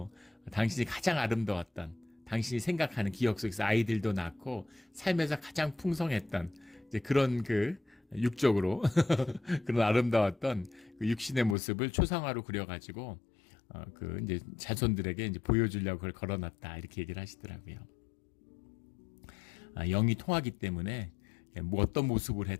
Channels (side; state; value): right; drops out; at 11.6 s